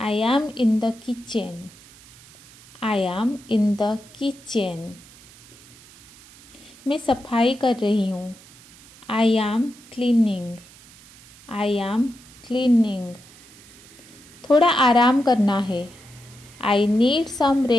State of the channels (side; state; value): right; noise; hiss, 23 dB below the sound